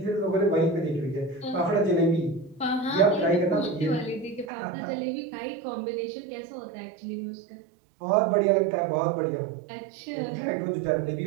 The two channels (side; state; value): left; drops out; at 4.5 s